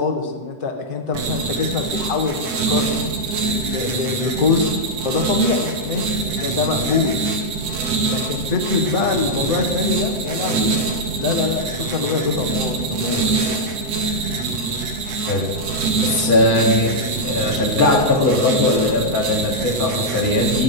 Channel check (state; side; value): late; left; 7.8 ms